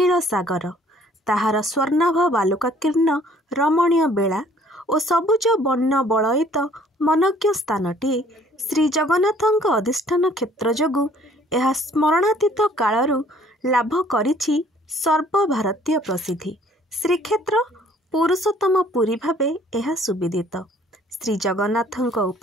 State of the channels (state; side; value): normal; both; correlation 0.58